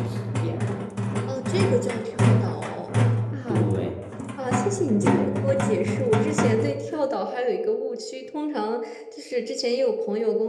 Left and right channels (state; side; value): identical; both; correlation 1.00